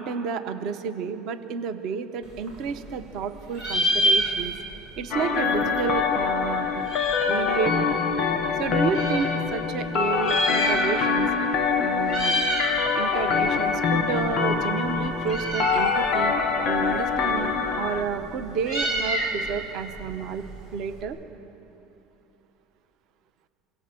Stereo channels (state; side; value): normal; both; correlation 0.33